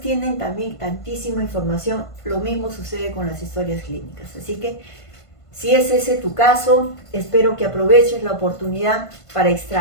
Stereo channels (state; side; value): late; right; 1.5 ms